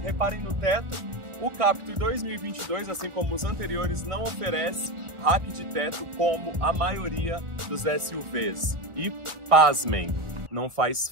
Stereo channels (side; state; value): left; late; 1.2 ms